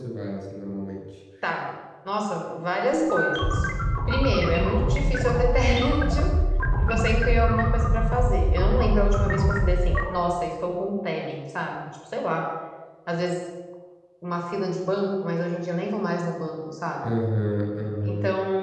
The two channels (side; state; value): both; identical; correlation 1.00